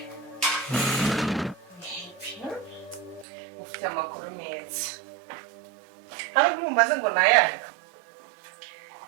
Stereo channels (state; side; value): drops out; left; at 3.2 s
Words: Ufite amakuru meza. Hari umumaze ngo nayanga.